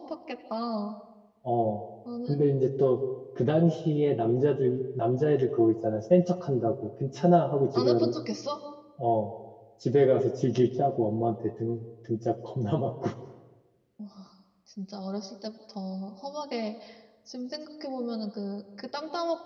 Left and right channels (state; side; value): identical; both; correlation 1.00